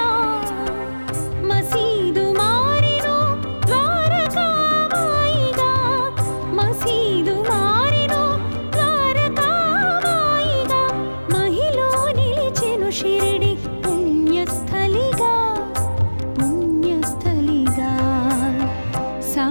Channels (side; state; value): both; inverted; correlation -1.00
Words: మసీదు మారెను ద్వారకామాయిగా, మసీదు మారెను ద్వారకామాయిగా. మహిలో నిలిచెను షిరిడి పుణ్యస్థలిగా, పుణ్యస్థలిగా.